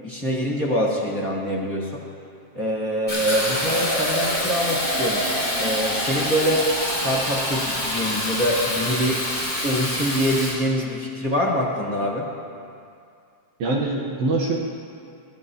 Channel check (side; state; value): left; late; 7.5 ms